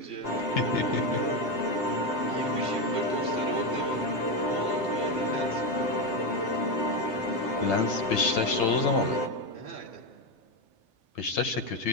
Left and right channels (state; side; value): late; right; 3.3 ms